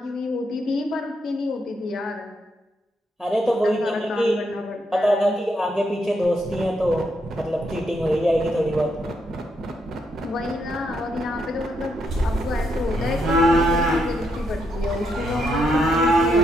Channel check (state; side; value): normal; both; correlation 0.78